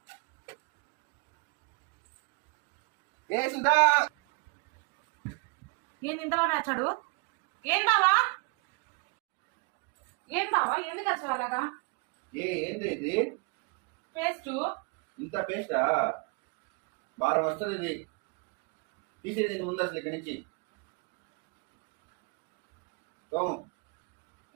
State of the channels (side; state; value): left; quieter; 31.7 dB